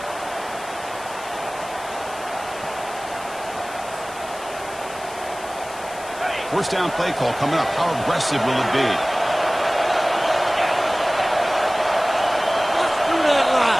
First down play call coming up. How aggressive will it be?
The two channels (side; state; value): left; noise; hiss, 17 dB below the sound